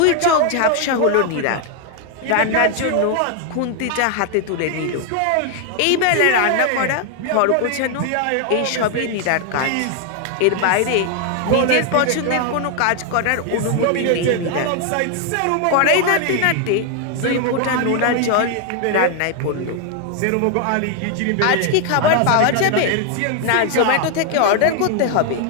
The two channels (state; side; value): different; both; correlation 0.00